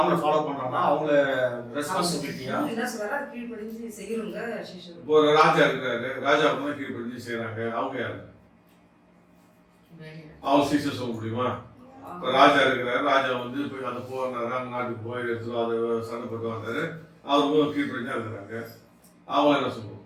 ஃபாலோ பண்றாங்கன்னா அவங்கள ரெஸ்பான்சிபிலிட்டியா இப்போ ஒரு ராஜா இருக்கிறாரு, ராஜா கீழ்படிஞ்சு செய்யறாங்க, அவங்க யாரு? அவங்க சீசர் சொல்ல முடியுமா? இப்போ ராஜா இருக்கிறாரு, ராஜா போய் அந்த போறாரு, அவங்க நாட்டுக்கு போய் எடுத்து அதை சண்டை போட்டு வந்தாரு, அவருக்கும் கீழ்படிஞ்சா இருக்கிறாங்க, அவங்க என்ன சொல்லுவோம்?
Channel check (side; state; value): both; identical; correlation 1.00